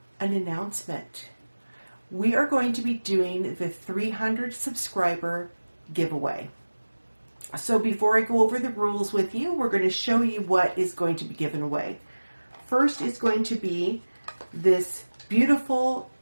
an announcement. We are going to be doing the 300 subscriber giveaway. So before I go over the rules with you, we're going to show you what is going to be given away. First is going to be this beautiful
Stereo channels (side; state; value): both; inverted; correlation -1.00